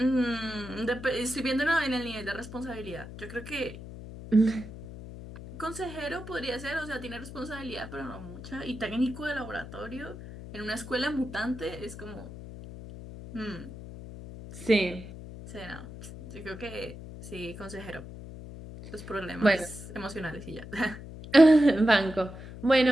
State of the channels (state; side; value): noise; left; hum, 12 dB below the sound